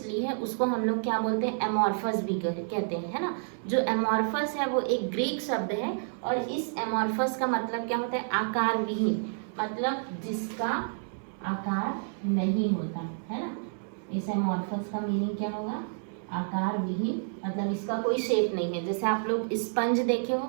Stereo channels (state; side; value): silent; left; 58 dB below the other